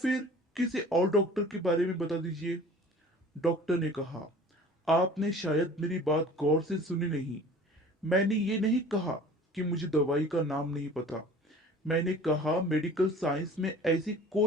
किसी और डॉक्टर के बारे में बता दीजिए। डॉक्टर ने कहा, आपने शायद मेरी बात गौर से सुनी नहीं। मैंने ये नहीं कहा कि मुझे दवाई का नाम नहीं पता। मैंने कहा मेडिकल साइंस में ऐसी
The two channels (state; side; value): normal; both; correlation 0.45